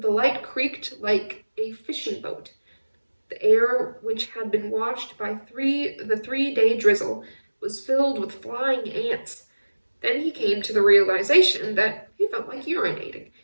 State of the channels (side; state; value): both; inverted; correlation -1.00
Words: the light creaked like a fishing boat. The air, which had been washed by the 3-day drizzle, was filled with flying ants. Then he came to the realization that he felt like urinating,